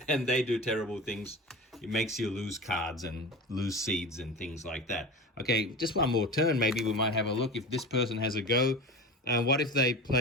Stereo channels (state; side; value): normal; both; correlation 0.30